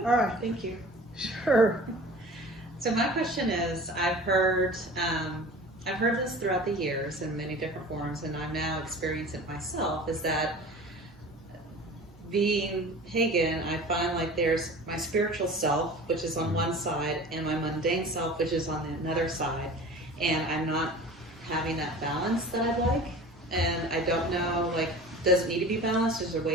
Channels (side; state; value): both; normal; correlation 0.40